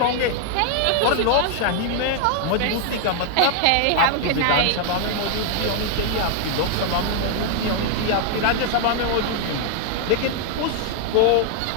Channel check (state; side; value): different; both; correlation 0.00